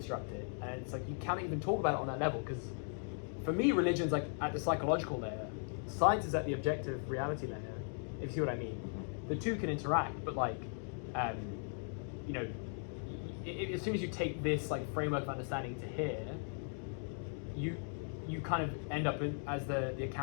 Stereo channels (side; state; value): right; silent; 52 dB below the other